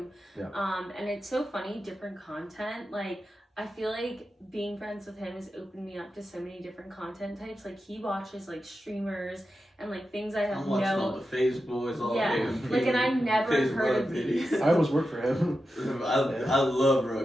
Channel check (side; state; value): both; normal; correlation 0.90